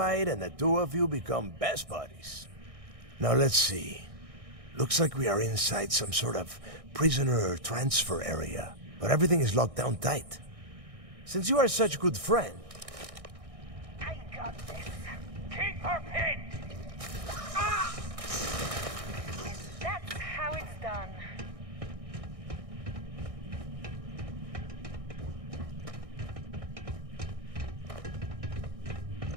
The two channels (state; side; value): late; left; 1.6 ms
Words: and the two of you become best buddies. Now let's see. Looks like we are inside some sort of prisoner transfer area, but everything is locked down tight. Since you are such a good friend, I got this. Keep her pinned. Ah! That's how it's done.